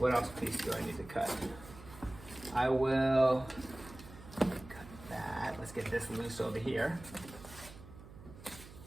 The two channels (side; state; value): right; noise; hum, 17 dB below the sound